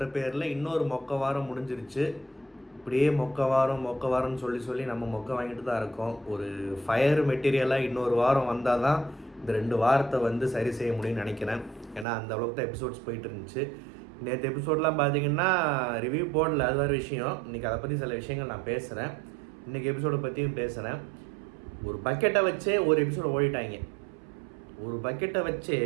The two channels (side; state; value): left; drops out; at 12.1 s